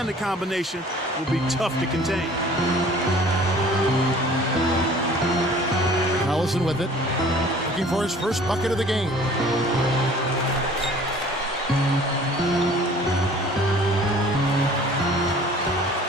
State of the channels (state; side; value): normal; both; correlation 0.49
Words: of combination will be tough to contain. Collison with it. Looking for his first bucket of the game.